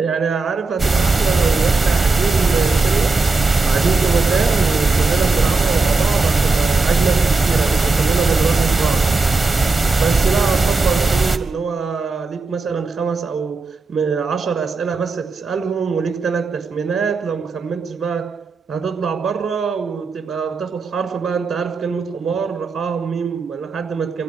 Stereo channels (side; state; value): left; quieter; 3.9 dB